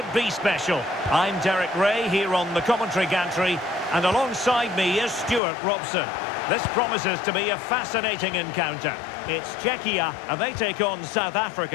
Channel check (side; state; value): right; drops out; at 5.4 s